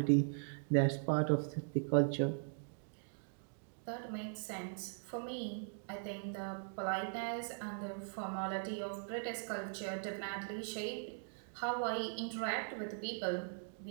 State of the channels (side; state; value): left; silent; digital silence